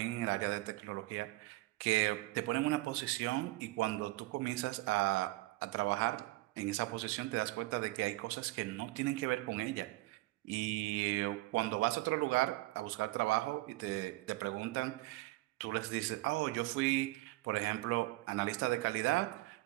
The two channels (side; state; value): left; quieter; 20.0 dB